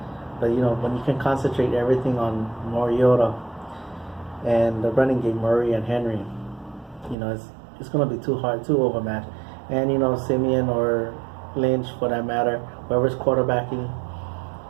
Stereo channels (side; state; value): left; drops out; at 7.2 s